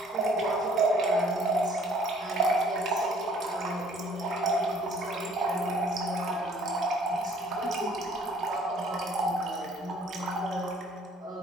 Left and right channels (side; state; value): both; normal; correlation 0.58